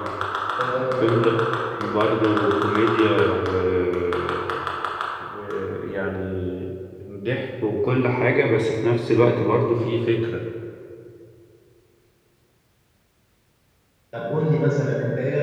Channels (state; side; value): identical; both; correlation 1.00